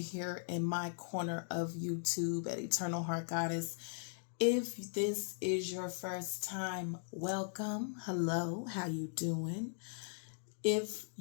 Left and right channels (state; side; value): silent; right; digital silence